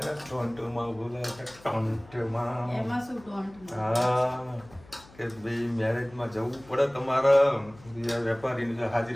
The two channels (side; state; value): left; noise; hum, 23 dB below the sound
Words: ટોન્ટોમાં બોલે કે ટોન્ટોમાં એમાં શું ટોન્ટ હા કે ભાઈ મેરેજમાં જવું પડે તમારે, વેપારીની